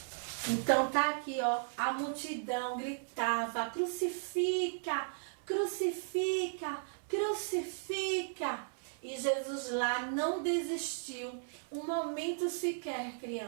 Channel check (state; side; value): silent; left; 54 dB below the other